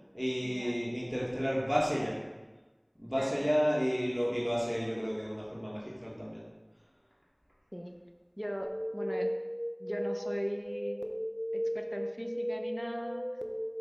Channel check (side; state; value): both; identical; correlation 1.00